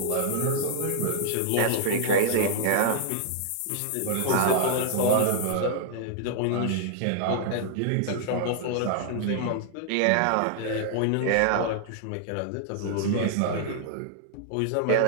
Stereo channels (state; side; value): different; both; correlation -0.01